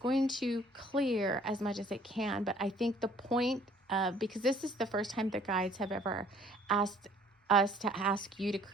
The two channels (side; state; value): both; normal; correlation 0.57